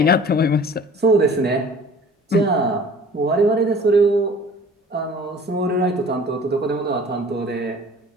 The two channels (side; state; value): both; normal; correlation 0.47